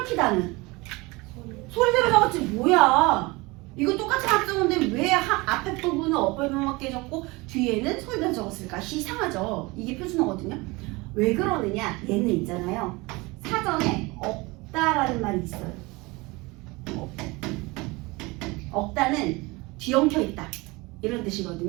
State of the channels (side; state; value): left; quieter; 23.9 dB